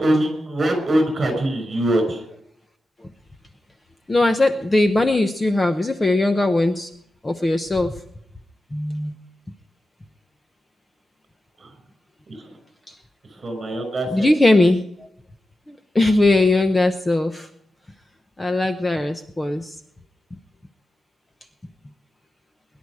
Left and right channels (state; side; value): normal; both; correlation 0.92